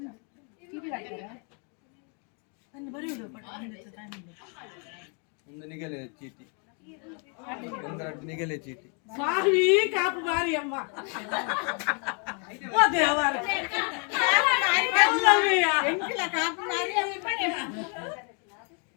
ಒಂದು ನಿಗಲೆ ಚೀಟಿ ನಿಗಲೆ ಚೀಟಿ ಸ್ವಾಮಿ ಕಾಪು ಮಾರಿ ಅಮ್ಮ ಓ ದೇವರ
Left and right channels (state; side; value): quieter; right; 38.3 dB